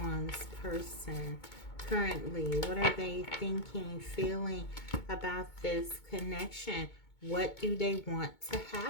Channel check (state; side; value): late; right; 2.2 ms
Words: person currently? What are they thinking, feeling about this connection? What do they want to